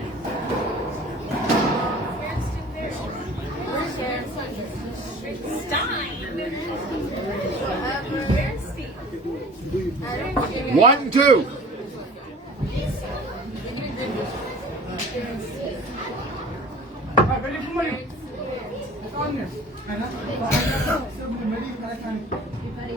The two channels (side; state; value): both; normal; correlation 0.44